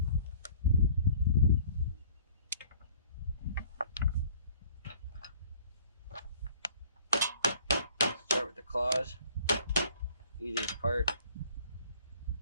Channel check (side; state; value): both; inverted; correlation -0.54